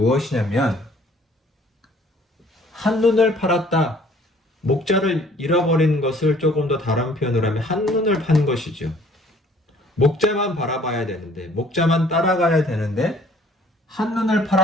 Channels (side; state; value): both; normal; correlation 0.56